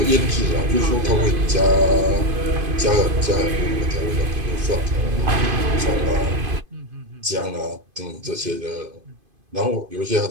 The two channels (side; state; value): left; late; 2.5 ms